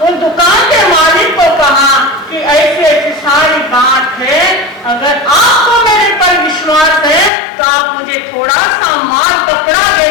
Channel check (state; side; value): drops out; right; at 7.3 s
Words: उन दुकान के मालिक को कहा कि ऐसी ऐसी सारी बात है, अगर आपको मेरे पर विश्वास है तो आप मुझे थोड़ा सा माल कपड़ा दे